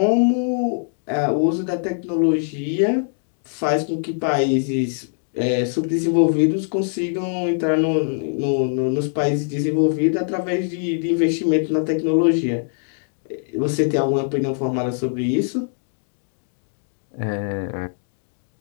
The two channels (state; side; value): silent; right; digital silence